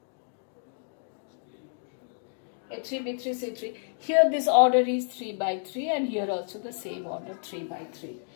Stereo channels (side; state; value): right; silent; digital silence